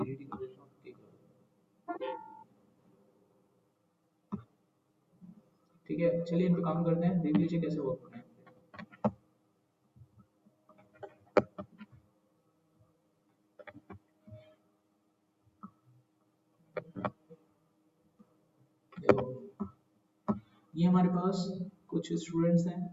ही कर देता हूँ, ठीक है। ठीक है, चलिए इन पे काम करते हैं, देख लीजिए कैसे वर्क होना है। देखो ये हमारे पास कुछ स्टूडेंट्स हैं,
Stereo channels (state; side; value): identical; both; correlation 1.00